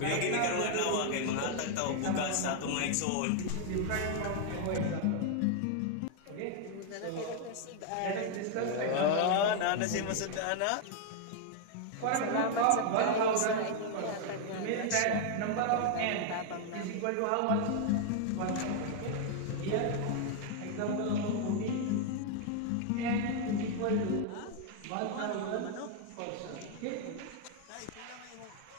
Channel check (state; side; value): different; both; correlation 0.00